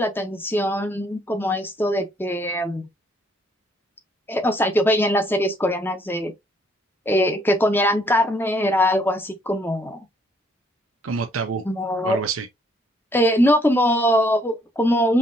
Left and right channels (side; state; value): both; normal; correlation 0.66